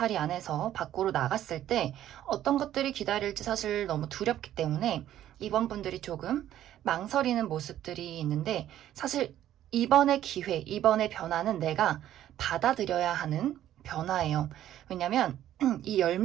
안에서 밖으로 나갔을 때 어떤 것들이 기다릴지 사실 너무 두렵기 때문에 이번 분들이 조금 망설이는 모습들이 있는데, 사실 이번의 기회, 이번의 변화는 내가 받아들여야 하는 변화예요. 왜냐면 이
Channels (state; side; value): quieter; left; 12.1 dB